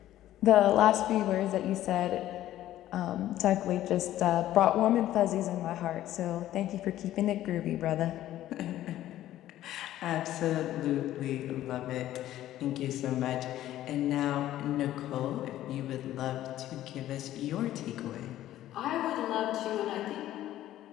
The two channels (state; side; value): quieter; right; 13.5 dB